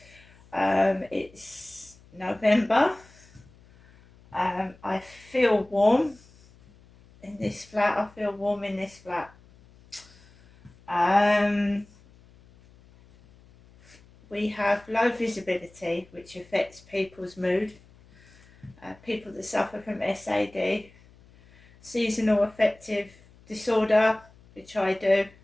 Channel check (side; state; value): left; noise; hum, 26 dB below the sound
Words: it's November. I feel warm in this flat, we have low visibility which affects people's mood. People that suffer from SAD, seasonal affective disorder, which I do.